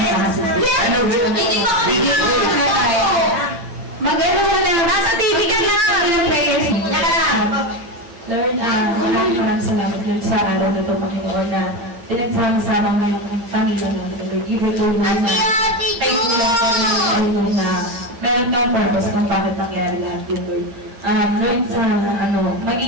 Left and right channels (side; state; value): left; late; 8.8 ms